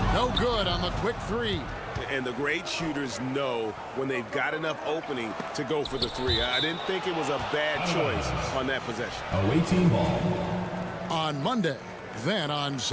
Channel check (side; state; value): both; identical; correlation 1.00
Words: No good on the quick 3. And the great shooters know when they've got enough opening to go for the 3. I didn't think it was a bad choice on that possession. Away team ball. On Monday, then on